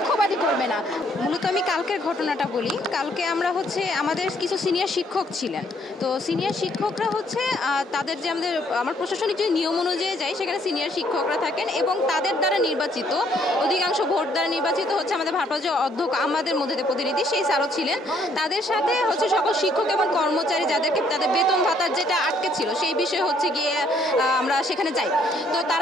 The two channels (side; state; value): both; normal; correlation 0.67